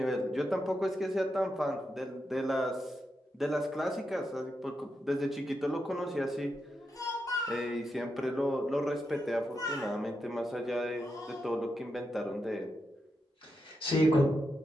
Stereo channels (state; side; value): normal; both; correlation 0.85